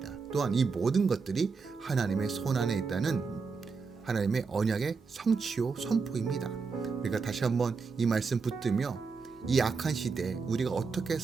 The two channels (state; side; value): quieter; left; 4.9 dB